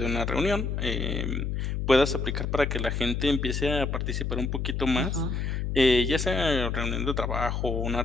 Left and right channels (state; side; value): noise; left; hum, 1 dB below the sound